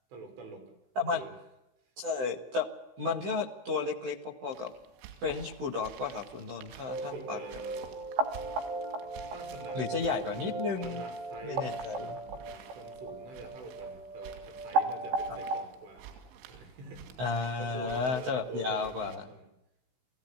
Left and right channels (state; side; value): late; left; 16 ms